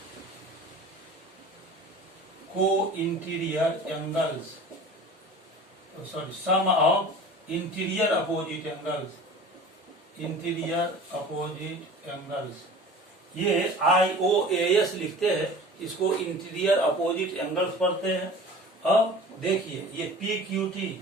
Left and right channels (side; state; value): both; normal; correlation 0.40